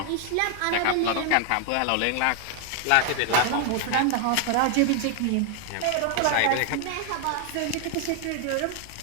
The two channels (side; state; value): both; different; correlation 0.00